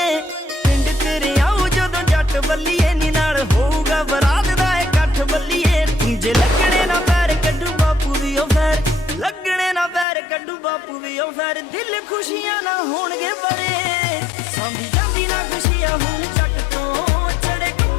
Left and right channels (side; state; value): right; drops out; at 10.1 s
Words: पिंड तेरे आऊ जदों जट बल्लीए नी नाल होऊगा बरात दा इकट्ठ बल्लीए जे लगणे ना पैर कड्डू बापू दी ओ फैर लगणे ना पैर कड्डू बापू दी ओ फैर दिल खुशियां ना होणगे बड़े सांभी जांदी ना खुशियां हुण जट तो चढ़े